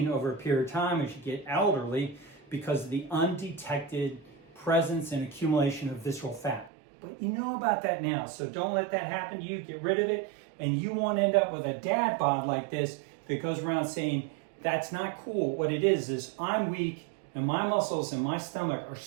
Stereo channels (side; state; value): left; drops out; at 6.7 s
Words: over a period of time as you get elderly because of the undetected presence and accumulation of visceral fat. But you know about that now, so don't let that happen to you. Get rid of it, and you won't end up with a dad bod like this that goes around saying, that's not cool. What it is I'm weak, and my muscles and my stomach are